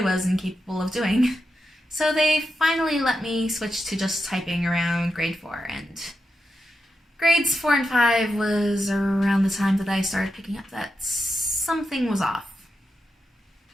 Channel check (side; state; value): both; normal; correlation 0.88